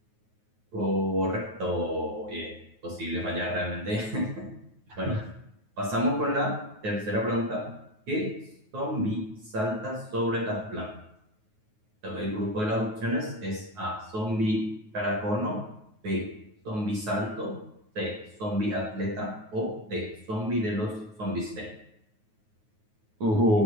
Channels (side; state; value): left; late; 9.4 ms